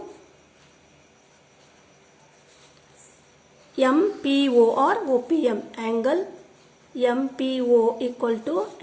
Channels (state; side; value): identical; both; correlation 1.00